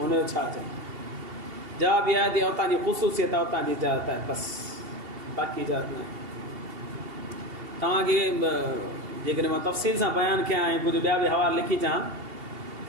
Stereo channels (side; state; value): left; late; 2.8 ms